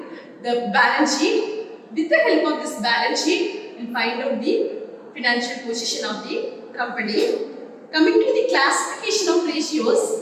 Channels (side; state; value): both; identical; correlation 1.00